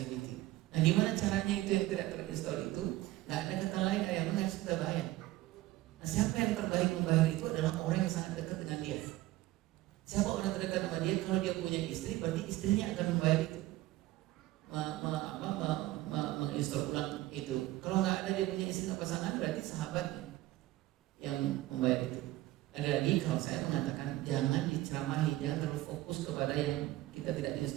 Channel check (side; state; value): left; quieter; 16.8 dB